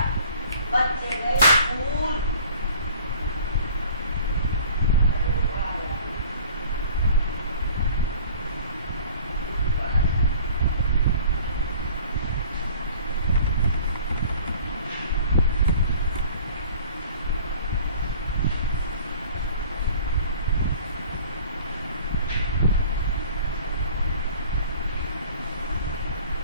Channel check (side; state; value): both; inverted; correlation -0.48